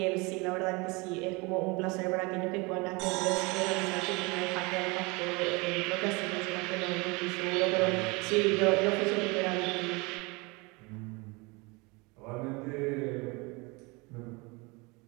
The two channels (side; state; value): left; quieter; 26.7 dB